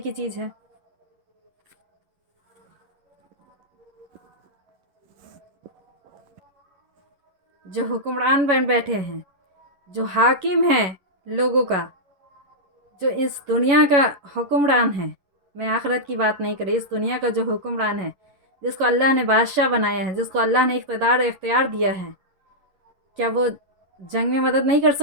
चीज़ है। جو حکمران بن بیٹھے ہیں، جو حاکم ہیں لوگوں کا، جو اس دنیا کا حکمران ہے، میں آخرت کی بات نہیں کر رہی، اس دنیا کا جو حکمران ہے، جس کو اللہ نے بادشاہ بنایا ہے، جس کو اللہ نے اقتدار اختیار دیا ہے، کیا وہ جنگ میں مدد نہیں کر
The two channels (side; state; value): left; late; 11 ms